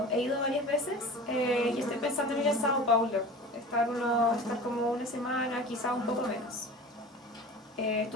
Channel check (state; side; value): normal; both; correlation 0.36